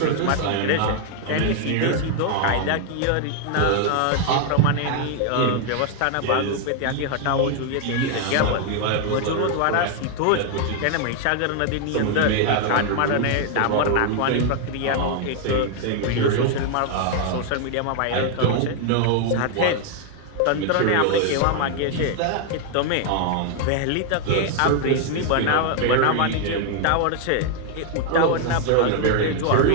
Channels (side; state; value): both; different; correlation 0.00